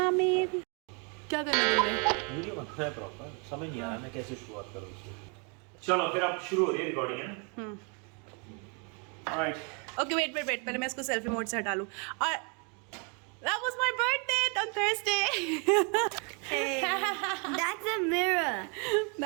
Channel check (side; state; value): left; quieter; 35.5 dB